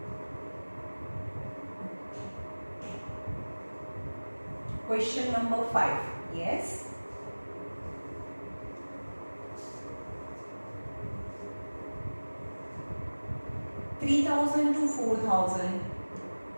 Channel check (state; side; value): inverted; both; correlation -1.00